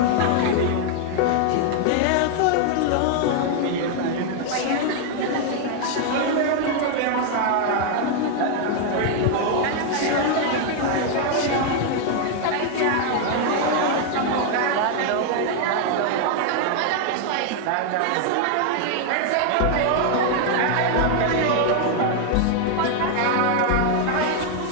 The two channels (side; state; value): both; different; correlation 0.00